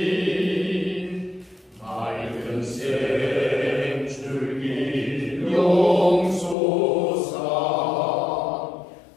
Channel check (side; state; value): right; drops out; at 6.6 s